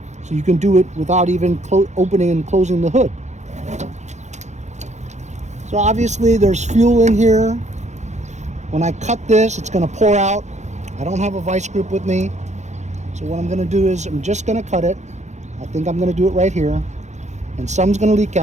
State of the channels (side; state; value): left; late; 0.34 ms